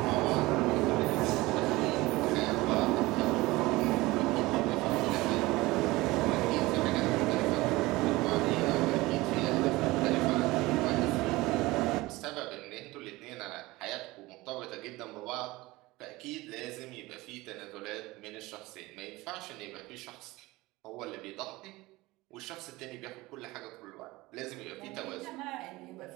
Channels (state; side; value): quieter; left; 20.4 dB